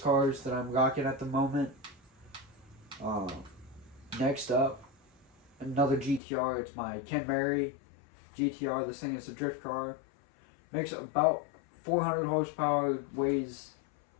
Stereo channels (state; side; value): drops out; right; at 6.2 s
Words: that I'm rocking at the moment. Next up, another GTR. It's my Ken Mary GTR. This thing is a drift car. Makes about 400 horsepower, weighs